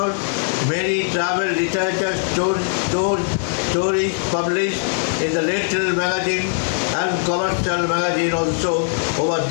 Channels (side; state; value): right; silent; digital silence